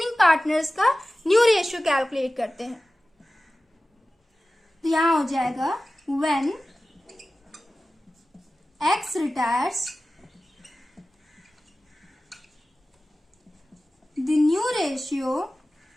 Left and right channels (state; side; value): normal; both; correlation 0.96